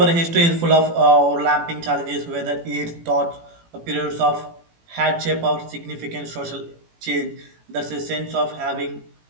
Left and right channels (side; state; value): left; late; 18 ms